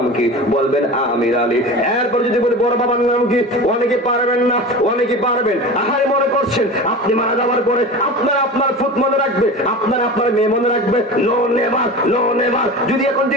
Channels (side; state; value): both; normal; correlation 0.32